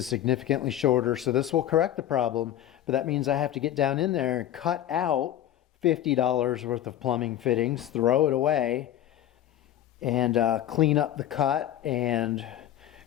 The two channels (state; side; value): quieter; right; 11.9 dB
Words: significantly shorter, so this will correct the problem, but that means I have to get down in there and cut out $50 worth of plumbing fittings, throw it away, and clean up the cut and